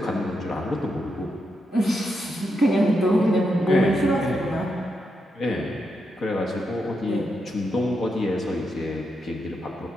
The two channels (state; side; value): normal; both; correlation 0.84